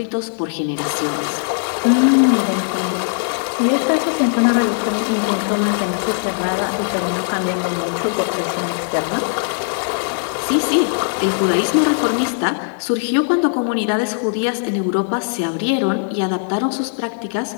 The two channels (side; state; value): right; silent; digital silence